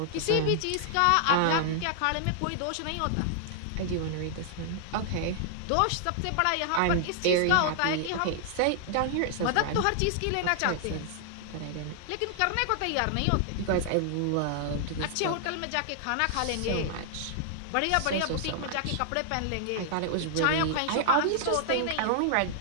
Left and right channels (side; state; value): both; different; correlation -0.01